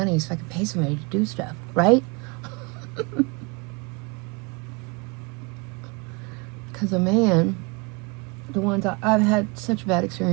so I could pay somebody to do stuff, right? Because a man, the ones I've had such bad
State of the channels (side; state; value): left; quieter; 28.8 dB